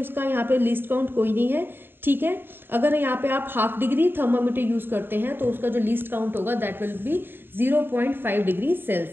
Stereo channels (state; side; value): late; left; 0.099 ms